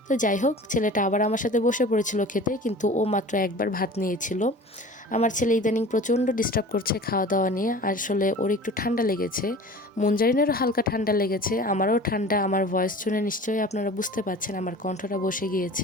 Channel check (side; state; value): both; normal; correlation 0.40